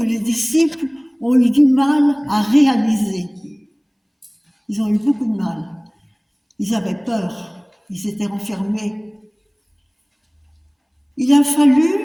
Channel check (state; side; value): identical; both; correlation 1.00